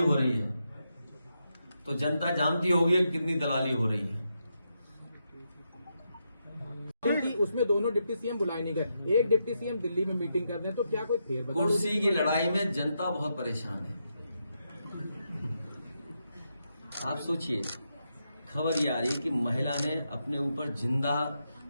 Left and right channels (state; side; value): inverted; both; correlation -0.83